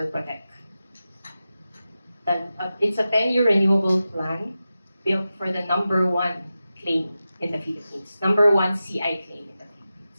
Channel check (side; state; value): both; inverted; correlation -0.93